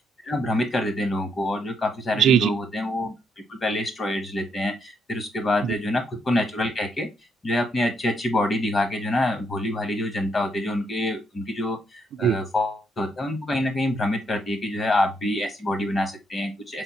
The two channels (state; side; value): normal; both; correlation 0.75